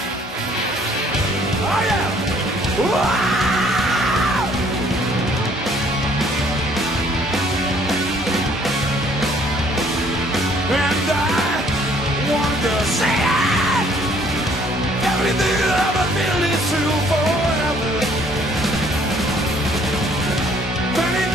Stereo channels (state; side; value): normal; both; correlation 0.60